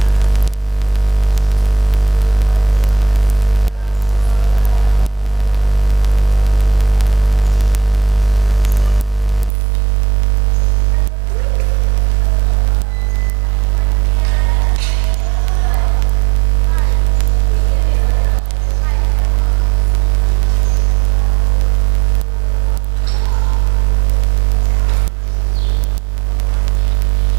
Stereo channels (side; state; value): left; drops out; at 9.5 s